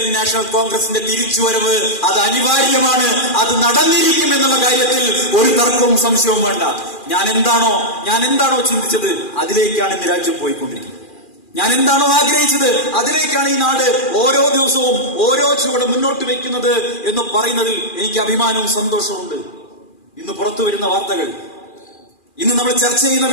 നാഷണൽ കോൺഗ്രസിന്റെ തിരിച്ചുവരവ് അത് അനിവാര്യമാണ്. അത് നടന്നിരിക്കും എന്നുള്ള കാര്യത്തിൽ ഒരു തർക്കവും സംശയവും വേണ്ട. ഞാൻ എന്താണോ ചിന്തിച്ചത് അതിലേക്കാണ് ഇന്ന് രാജ്യം പോയിക്കൊണ്ടിരിക്കുന്നത്. ഞാൻ എന്താണോ ആഗ്രഹിച്ചത് അതിലേക്കാണ് ഈ നാട് ഓരോ ദിവസവും ഓരോ ചുവട് മുന്നോട്ട് വെക്കുന്നത് എന്ന് പറയുന്നതിൽ എനിക്ക് അഭിമാനവും സന്തോഷവും. ഇന്ന് പുറത്തു വരുന്ന വാർത്തകൾ, ഇന്ന് നമ്മൾ ചർച്ച ചെയ്യുന്ന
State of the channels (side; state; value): right; late; 2.4 ms